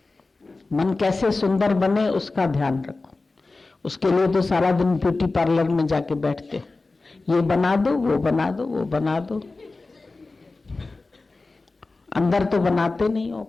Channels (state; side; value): quieter; right; 3.5 dB